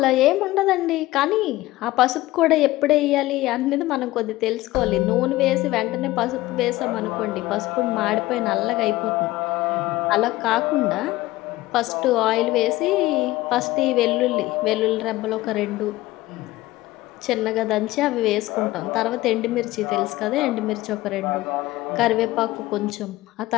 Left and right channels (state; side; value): quieter; right; 17.7 dB